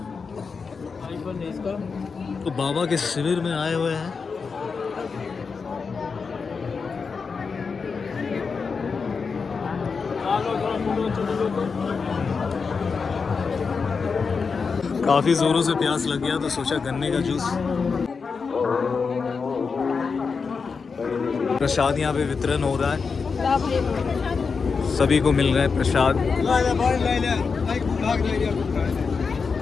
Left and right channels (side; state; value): right; quieter; 5.2 dB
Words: तो बाबा के शिविर में आए हुए हैं। काफी जोरों से प्यास लग गया तो सोचा गन्ने का जूस। प्रसाद यहाँ पे वितरण हो रहा है, सभी को मिल रहा है प्रसाद।